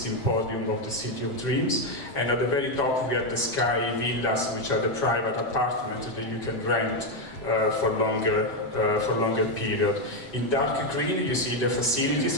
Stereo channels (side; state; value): right; late; 7.7 ms